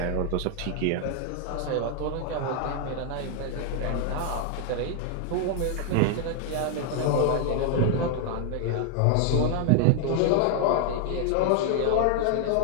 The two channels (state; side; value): different; both; correlation 0.00